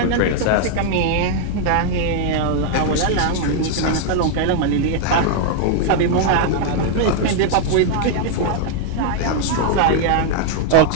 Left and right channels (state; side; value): different; both; correlation 0.00